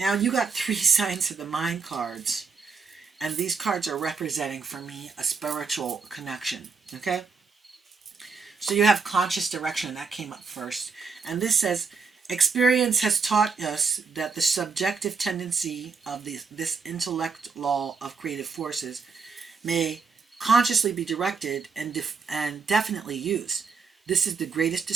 you got 3 signs of the mind cards, and these cards are representing, for me, a spiritual connection, okay? So you have conscious direction, that came up first. And this says, experience has taught us that the subjective tendency of this intellect law of creative forces may consciously be directed and definitely used. This is the greatest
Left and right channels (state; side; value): quieter; left; 5.1 dB